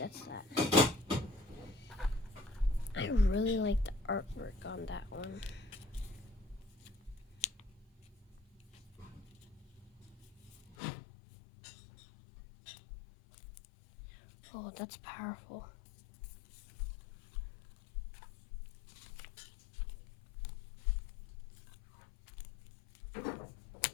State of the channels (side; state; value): right; drops out; at 10.8 s